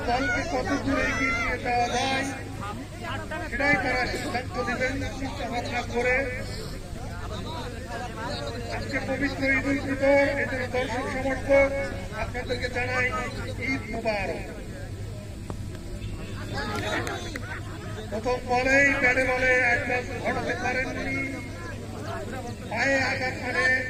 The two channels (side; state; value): both; identical; correlation 1.00